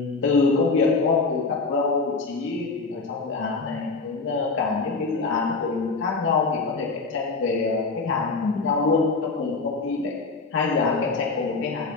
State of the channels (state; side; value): quieter; right; 4.1 dB